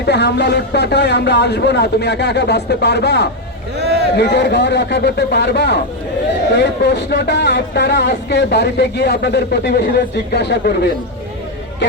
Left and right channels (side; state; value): both; normal; correlation 0.04